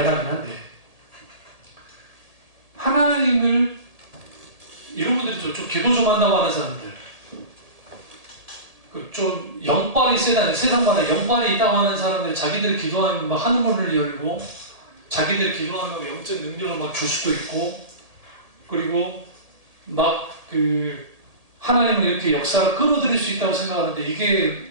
한데 하나님을 이런 분들이 좀 기도 좀 한다고 하는 사람들 좀 영빨이 세다는 세상마다 영빨이 있다고 하는 사람들이 자기들이 기도하면 막 하늘문을 열고 자기들이 기도하면 영적 능력을 막 줄 수도 있고 그리고 막 하나님을 이렇게 역사를 끌어들일 수 있다고 생각하는데 이게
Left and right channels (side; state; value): left; late; 1.8 ms